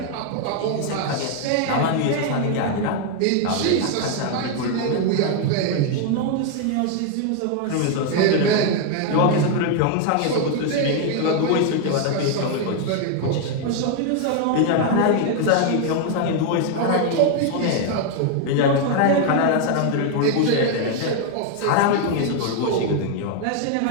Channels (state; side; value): different; both; correlation 0.00